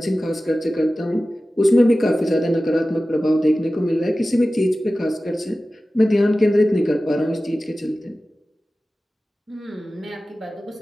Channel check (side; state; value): both; normal; correlation 0.95